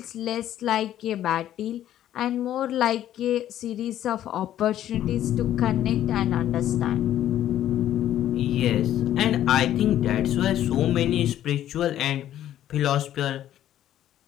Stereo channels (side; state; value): right; quieter; 12.0 dB